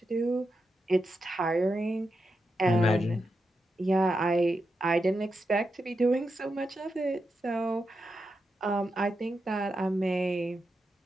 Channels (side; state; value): both; normal; correlation 0.87